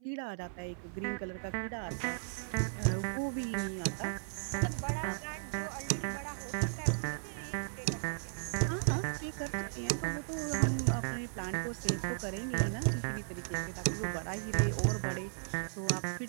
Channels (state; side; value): silent; left; 54 dB below the other